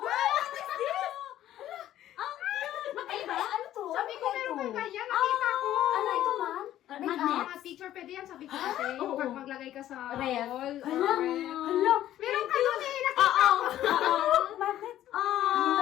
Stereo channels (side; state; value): right; quieter; 12.7 dB